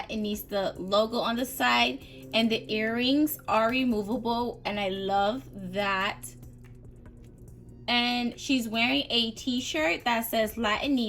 logo on the side, and the earrings are removable, and I love that. And she's wearing a t-shirt that says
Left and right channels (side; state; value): both; identical; correlation 1.00